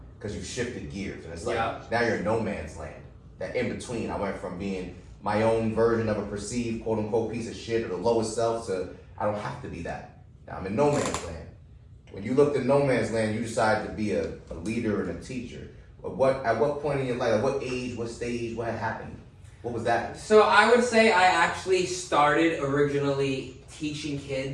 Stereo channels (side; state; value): both; identical; correlation 1.00